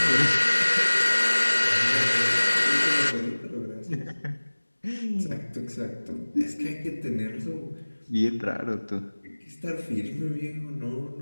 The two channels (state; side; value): inverted; both; correlation -1.00